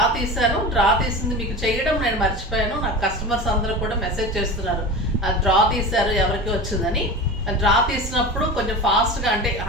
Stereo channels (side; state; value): both; normal; correlation 0.30